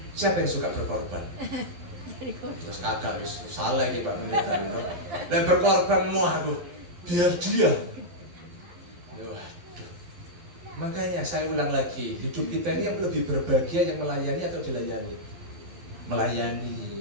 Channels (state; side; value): late; left; 11 ms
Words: Siapa yang suka berkorban? Terus kagak, salah nih Pak Pendeta. Dan berkorban mau aku, biar dia. Waduh. Makanya saya ulang lagi, hidup kita ini yang lebih berbahagia yang melayani atau dilayani?